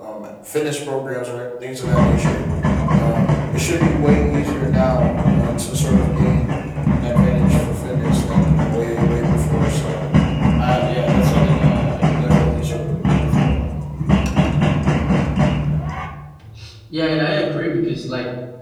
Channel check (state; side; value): identical; both; correlation 1.00